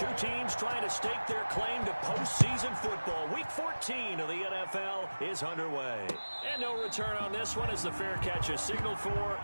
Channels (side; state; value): both; inverted; correlation -1.00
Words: teams trying to stake their claim to postseason football. Week 14 of the NFL is underway. And no return on this one as the fair catch is signaled for